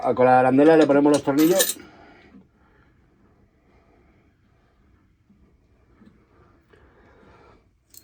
arandela le ponemos los tornillos.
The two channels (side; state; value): both; identical; correlation 1.00